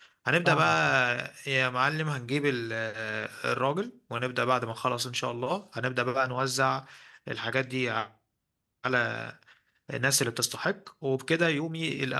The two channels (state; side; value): identical; both; correlation 1.00